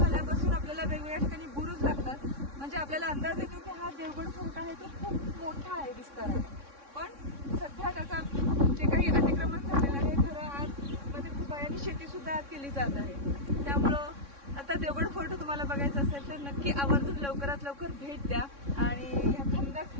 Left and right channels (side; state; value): left; late; 3.6 ms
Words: आपल्याला वेगवेगळ्या ठिकाणी बुरुज लागतात, म्हणजे आपल्याला अंदाज येतो की हा देवगड फोर्ट आहे तो खूप मोठा आहे विस्ताराने. पण सध्या त्याचा जे काही अतिक्रमण झालेलं आहे, खरं आतमध्ये खूप आहे आणि शेती सुद्धा आत केली जात आहे. त्यामुळं आता देवगड फोर्ट तुम्हाला बघायचं असेल तर नक्की आवर्जून लवकरात लवकर भेट द्या आणि ह्या